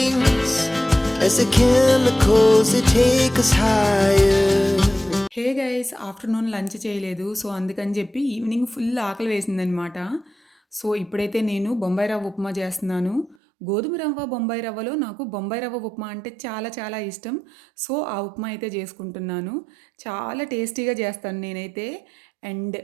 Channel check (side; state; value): left; drops out; at 13.4 s